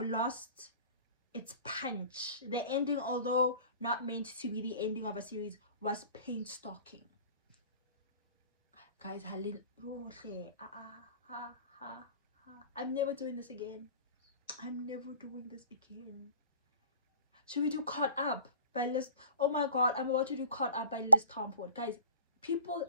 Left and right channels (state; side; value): inverted; both; correlation -0.45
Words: lost its punch. The ending, although not meant to be the ending of a series, was painstaking. Guys, I'm never doing this again. I'm never doing this again. Should we do Caught Up by Liz? Oh my god, I'm about to do Caught Up by Liz Tomford. Guys, people